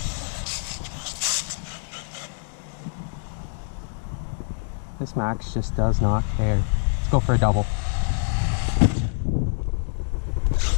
This Maxx just does not care. Let's go for a double.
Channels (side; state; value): right; silent; digital silence